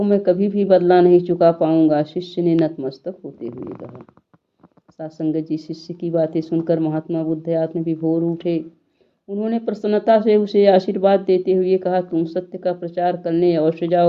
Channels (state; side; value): identical; both; correlation 1.00